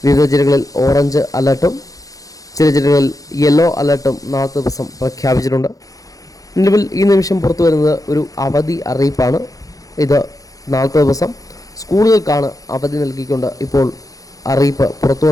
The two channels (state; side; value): late; right; 0.17 ms